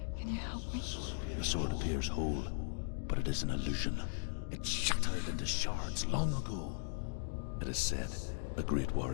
Can you help me? The sword appears whole, but it is an illusion. It shattered into shards long ago. It is said a great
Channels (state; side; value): silent; right; digital silence